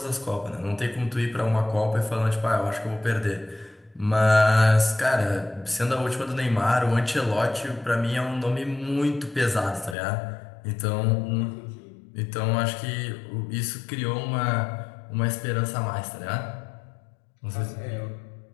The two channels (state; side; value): drops out; right; at 10.0 s